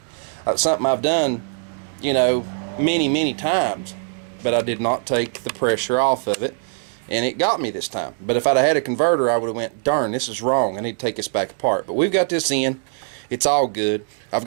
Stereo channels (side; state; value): left; silent; digital silence